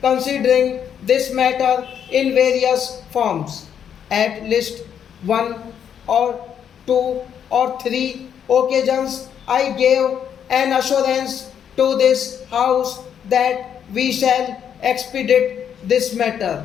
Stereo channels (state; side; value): quieter; right; 8.6 dB